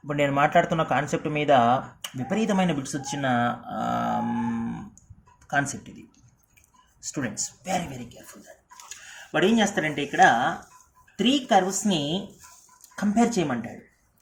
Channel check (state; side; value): identical; both; correlation 1.00